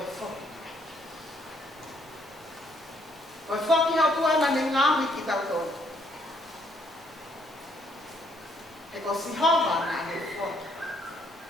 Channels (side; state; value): both; normal; correlation 0.69